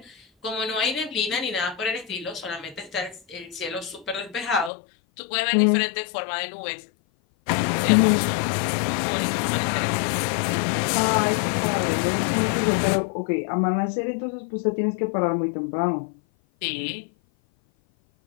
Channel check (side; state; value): right; drops out; at 4.7 s